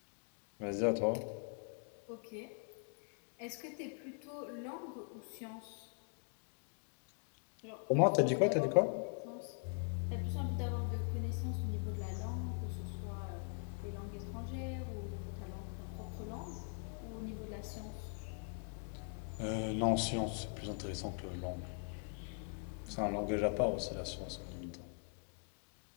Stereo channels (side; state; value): right; silent; 50 dB below the other